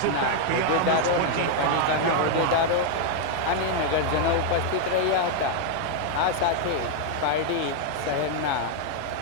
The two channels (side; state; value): both; different; correlation 0.00